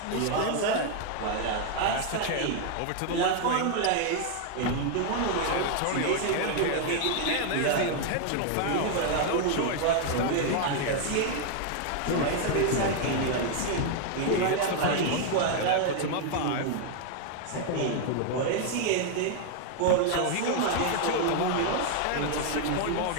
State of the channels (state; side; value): different; both; correlation 0.00